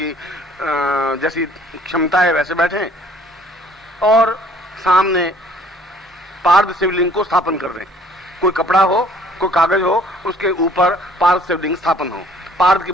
जैसी क्षमता है वैसे बैठे और सामने पार्थ शिवलिंग को स्थापन कर रहे हैं। कोई कपड़ा हो, कोई कागज हो, उसके ऊपर पार्थ शिवलिंग स्थापन हो, पार्थ के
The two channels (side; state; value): both; normal; correlation 0.57